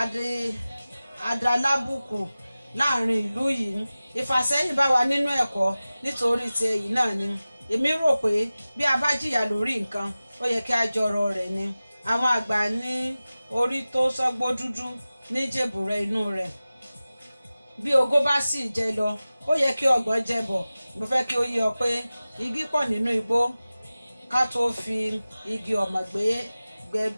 adalábùkù láàrin ìlú yìí. Ìfàsẹ́yìn bá wa nínú ẹ̀kọ́ nítorí ti èyí náà ni. Èmi rò pé bí a bá jìyà lórí nǹkan, ó yẹ kí a jọrọ rẹ̀ ni. Àwọn àgbà ní orí tó sọ́gbó dúdú ní jèbùrẹ́ inú rẹ̀. Bí ogó bá sì jẹ lọ, ó yẹ kí ọgbọ̀n jẹ bọ̀. Mo fẹ́ kí ó yé ọ pé igi pọ̀ nínú igbó ká tó fi igi ọ̀mọ̀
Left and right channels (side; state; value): both; inverted; correlation -0.97